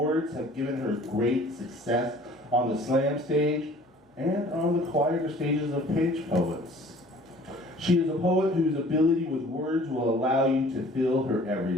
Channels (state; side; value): normal; both; correlation 0.51